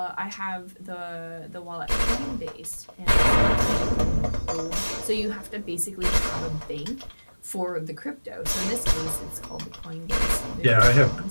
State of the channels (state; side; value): inverted; both; correlation -1.00